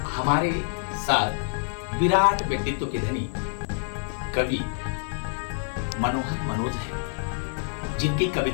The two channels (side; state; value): right; silent; digital silence